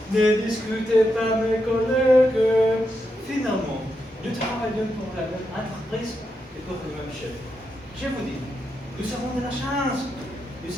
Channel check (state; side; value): normal; both; correlation 0.84